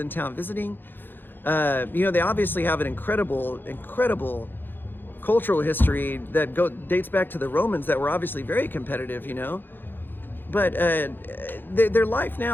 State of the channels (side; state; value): right; late; 0.096 ms